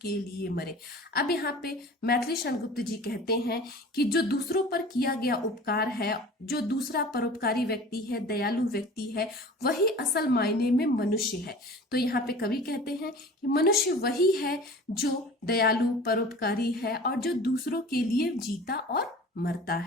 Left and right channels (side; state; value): both; normal; correlation 0.41